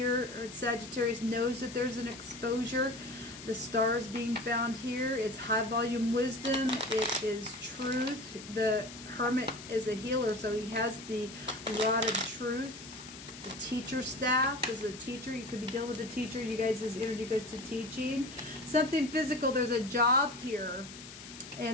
or Sagittarius, knows that there's an exposure. The star is being found here. It's high volume wisdom. It is truth. The Hermit is a healer, so he has the rod of truth. The teacher staff is a teacher. You could be dealing with a teacher. You guys' energy goes to teaching. Something physical. There's a job here,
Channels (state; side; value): noise; left; hiss, 14 dB below the sound